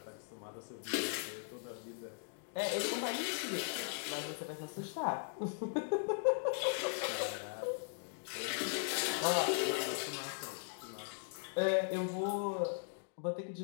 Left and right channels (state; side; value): silent; right; digital silence